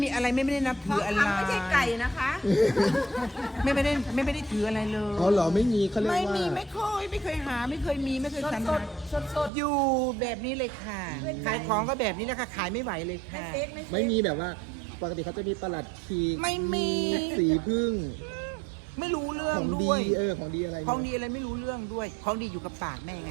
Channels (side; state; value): left; drops out; at 9.5 s